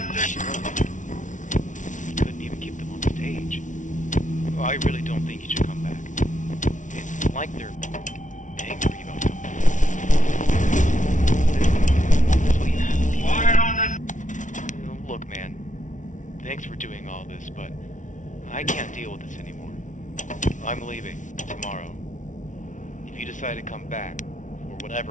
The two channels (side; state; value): right; late; 0.37 ms